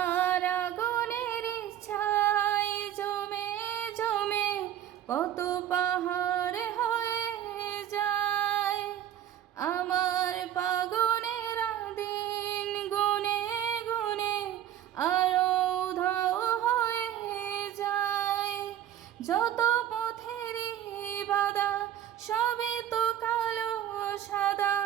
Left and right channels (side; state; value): left; quieter; 11.2 dB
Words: আগুনের ছাই জমে জমে কত পাহাড় হয়ে যায়। আমার পাগলের দিন গুনে গুনে আরো উধাও হয়ে যায়। যত পথেরই বাধা সবই তো কালো সাদা,